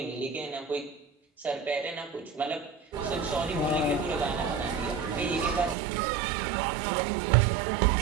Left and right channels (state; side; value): drops out; left; at 5.8 s